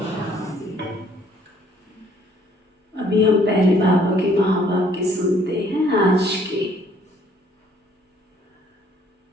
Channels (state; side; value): normal; both; correlation 0.62